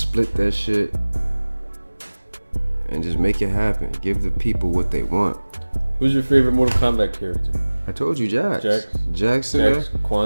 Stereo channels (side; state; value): both; inverted; correlation -1.00